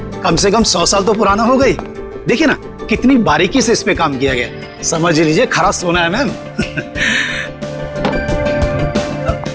कम से कम 100 साल तो पुराना हो गई। देखिए ना कितनी बारीकी से इस पे काम किया गया, समझ लीजिए खरा सोना है मैम।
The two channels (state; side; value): identical; both; correlation 1.00